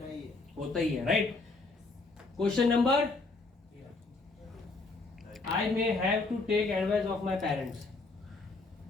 होता ही है, right? Question number, I may have to take advice of my parents.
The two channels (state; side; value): quieter; right; 3.6 dB